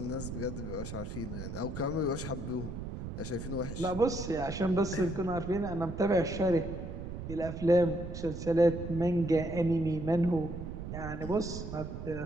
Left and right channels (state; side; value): noise; right; rumble, 7 dB below the sound